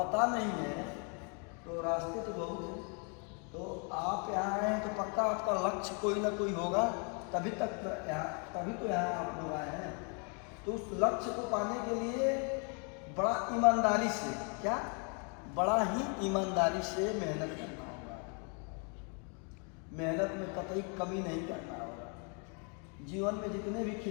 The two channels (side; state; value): right; quieter; 37.5 dB